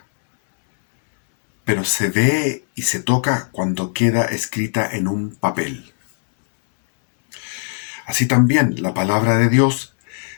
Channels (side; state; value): right; silent; digital silence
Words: pero se ve y se toca cuando queda escrita en un papel. Así también la palabra de Dios